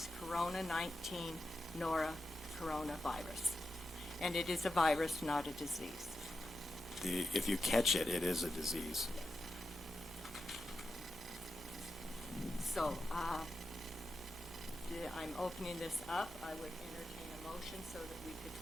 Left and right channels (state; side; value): normal; both; correlation 0.90